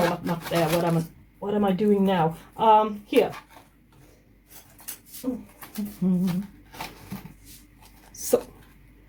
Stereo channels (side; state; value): both; identical; correlation 1.00